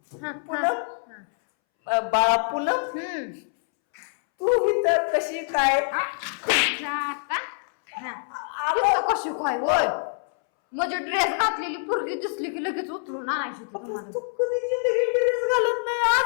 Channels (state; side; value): silent; right; 62 dB below the other